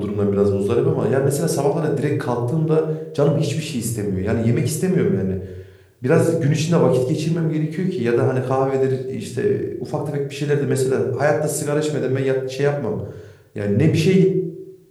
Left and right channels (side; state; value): both; identical; correlation 1.00